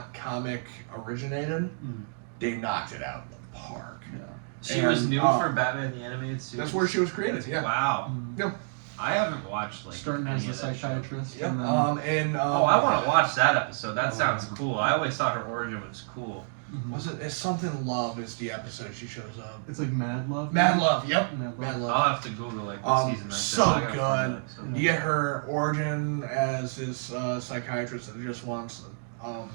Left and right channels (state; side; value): silent; left; digital silence